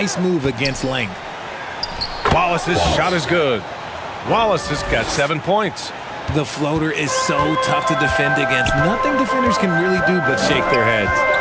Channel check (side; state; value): both; identical; correlation 1.00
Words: move against length. Wallace's shot is good. Wallace has got 7 points. The floater is so tough to defend against. Nothing defenders can really do but shake their heads.